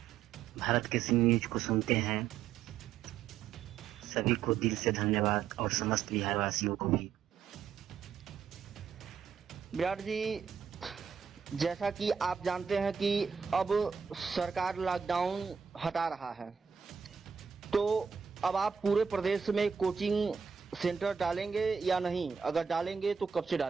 भारत केसरी न्यूज को सुनते हैं सभी को दिल से धन्यवाद, और समस्त बिहार वासियों को भी। विराट जी, जैसा कि आप जानते हैं कि अब सरकार लॉकडाउन हटा रहा है, तो अब आप पूरे प्रदेश में कोचिंग सेंटर डालेंगे या नहीं? अगर डालेंगे तो कब से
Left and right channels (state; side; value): quieter; left; 6.8 dB